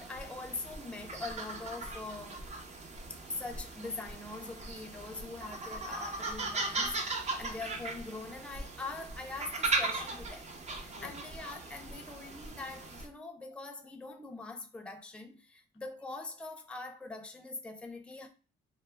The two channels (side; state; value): both; normal; correlation 0.13